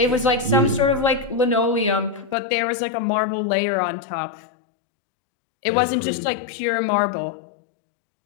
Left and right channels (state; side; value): drops out; right; at 2.4 s